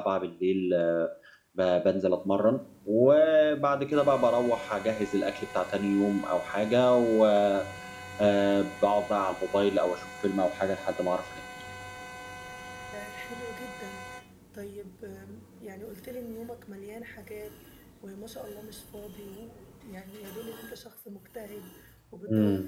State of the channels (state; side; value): identical; both; correlation 1.00